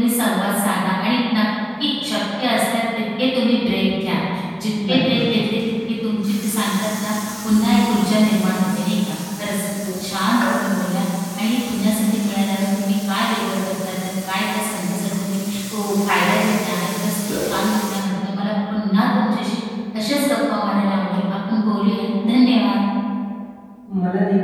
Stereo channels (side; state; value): both; identical; correlation 1.00